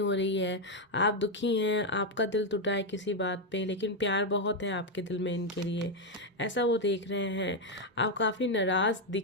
हो रही है, आप दुखी हैं, आपका दिल टूटा है किसी बात पे, लेकिन प्यार बहुत है आपके दिल में इनके लिए, ऐसा वो देख रहे हैं। आप काफ़ी नाराज़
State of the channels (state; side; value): normal; both; correlation 0.04